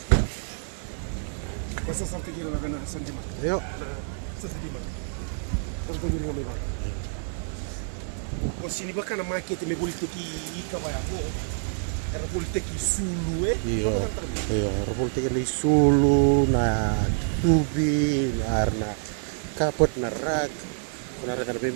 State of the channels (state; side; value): silent; left; 60 dB below the other